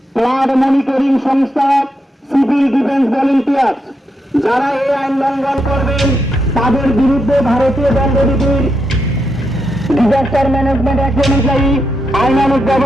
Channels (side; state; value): both; normal; correlation 0.83